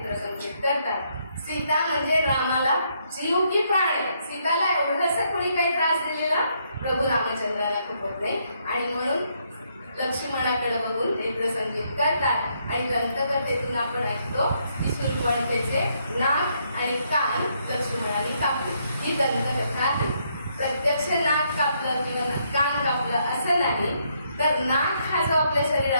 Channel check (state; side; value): inverted; both; correlation -0.74